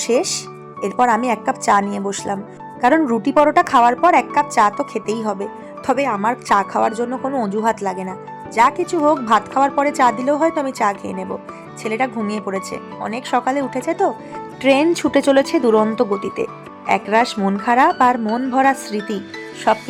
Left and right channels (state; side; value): identical; both; correlation 1.00